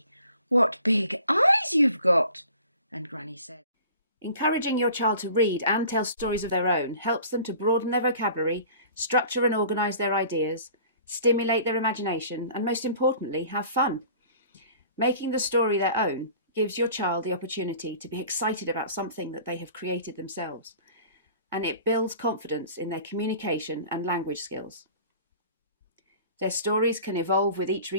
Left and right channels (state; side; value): inverted; both; correlation -0.47